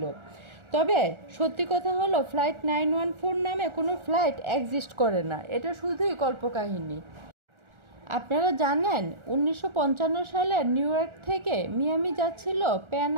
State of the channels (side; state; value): left; late; 1.4 ms